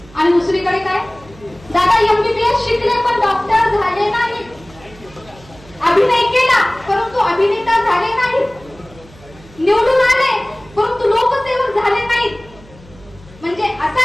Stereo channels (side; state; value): right; noise; hum, 23 dB below the sound